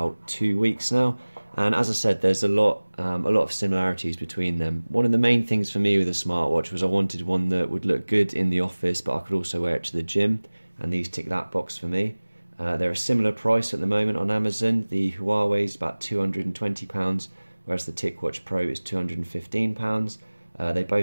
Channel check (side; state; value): both; inverted; correlation -1.00